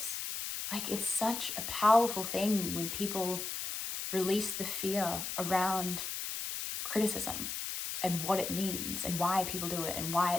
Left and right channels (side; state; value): left; noise; hiss, 4 dB below the sound